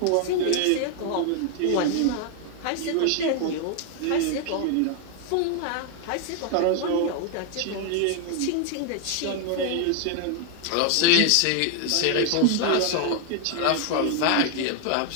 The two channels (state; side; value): different; both; correlation 0.01